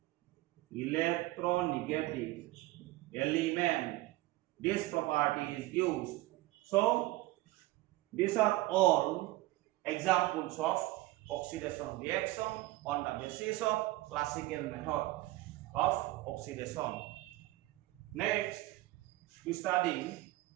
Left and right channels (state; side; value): quieter; left; 18.4 dB